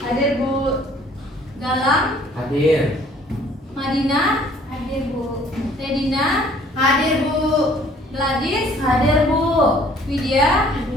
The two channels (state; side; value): normal; both; correlation 0.57